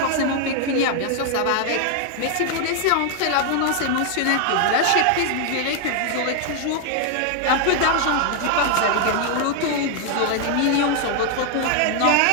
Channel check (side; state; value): both; different; correlation 0.00